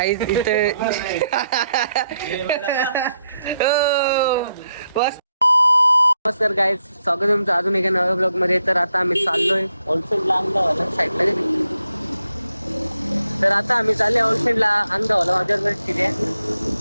इथे नमस्कार गाईज, स्वागत आहे तुमचं अजून एका नव्या ब्लॉग मध्ये. तर आता आम्ही चाललोय होलसेलला अंगावाला साईडला गेली. तर आता आम्ही चालले होलसेलला अंगावाला. माझ्यावर किती आहे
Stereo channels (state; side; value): inverted; both; correlation -0.80